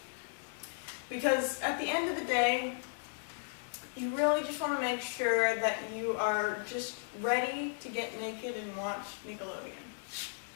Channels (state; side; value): silent; right; digital silence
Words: Because at the end of the day, you really just want to make sure that you are just ready to get naked and watch Nickelodeon.